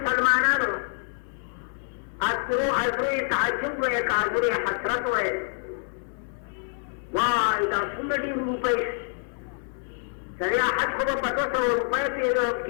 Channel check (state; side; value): silent; right; 60 dB below the other